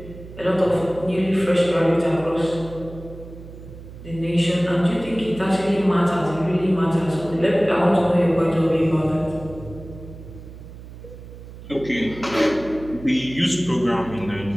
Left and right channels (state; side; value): noise; right; hum, 15 dB below the sound